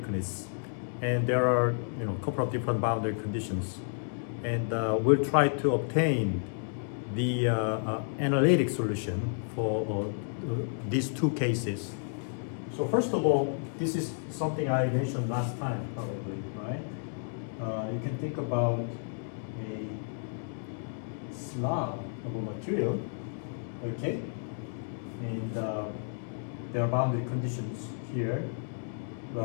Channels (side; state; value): right; silent; digital silence